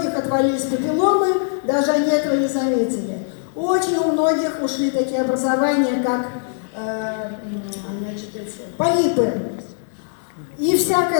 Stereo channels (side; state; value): right; silent; digital silence